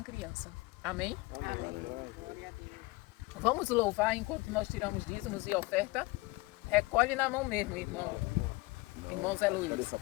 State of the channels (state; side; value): quieter; right; 22.8 dB